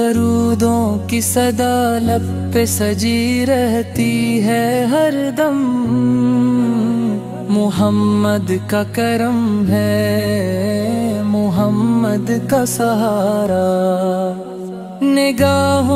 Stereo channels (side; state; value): both; identical; correlation 1.00